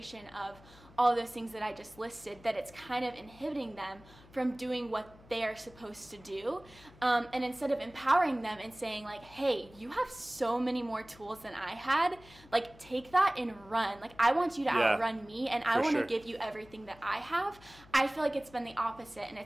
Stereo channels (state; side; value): noise; left; hum, 23 dB below the sound